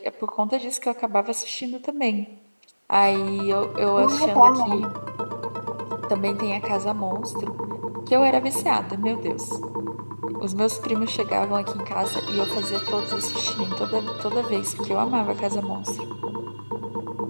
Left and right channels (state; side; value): inverted; both; correlation -1.00